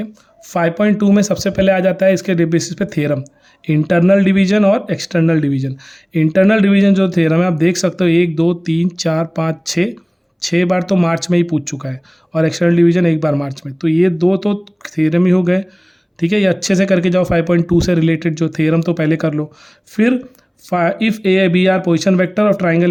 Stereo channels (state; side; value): identical; both; correlation 1.00